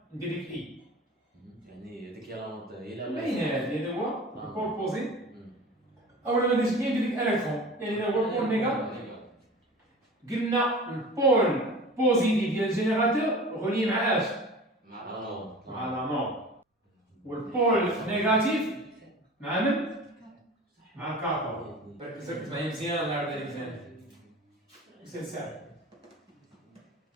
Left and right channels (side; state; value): both; normal; correlation 0.38